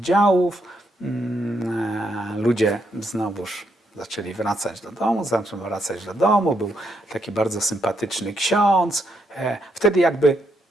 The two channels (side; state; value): both; normal; correlation 0.78